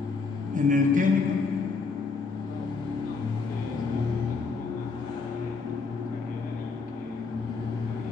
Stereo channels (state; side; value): quieter; right; 4.5 dB